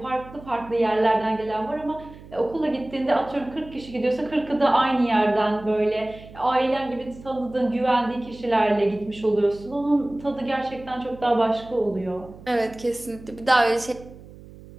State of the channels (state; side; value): noise; right; hum, 19 dB below the sound